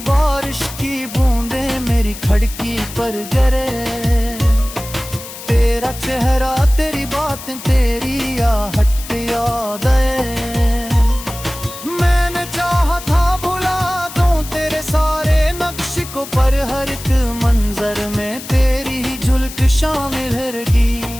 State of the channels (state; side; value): noise; left; hiss, 13 dB below the sound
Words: की बूंदें मेरी खिड़की पर गिरे, तेरा चेहरा तेरी बातें तेरी आहट याद आए। मैंने चाहा था भुला दूं तेरे सारे नक्श को, पर हर एक मंजर में तेरी ही झुलक शामिल रही।